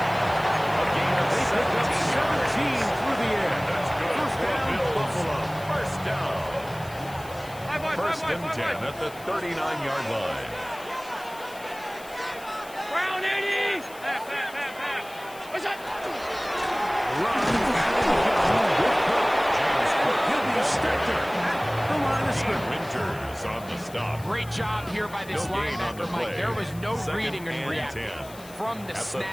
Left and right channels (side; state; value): left; noise; hiss, 20 dB below the sound